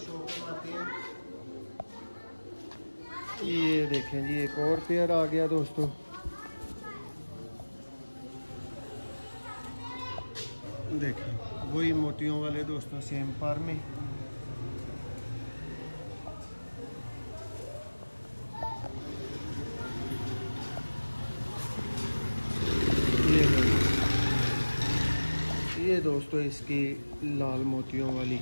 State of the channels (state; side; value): inverted; both; correlation -1.00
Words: करवाते हैं, ये देखें जी एक और पेयर आ गया दोस्तों। देखें वही मोतियों वाले दोस्तों सेम पार में। ये दोस्तों इसकी लाल मोतियों वाली